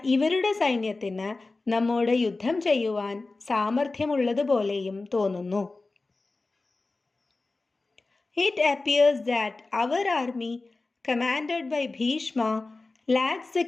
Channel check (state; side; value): quieter; right; 3.4 dB